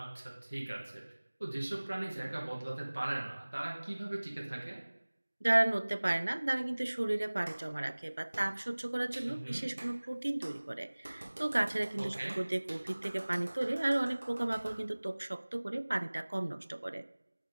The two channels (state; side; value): inverted; both; correlation -1.00